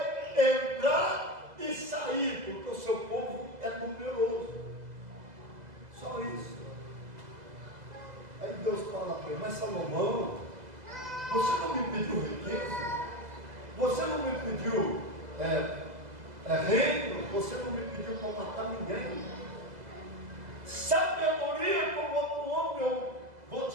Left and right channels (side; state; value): left; late; 2.0 ms